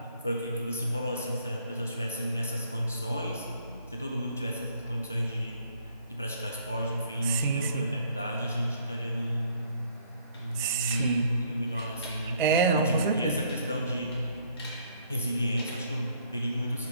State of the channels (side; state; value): both; inverted; correlation -0.63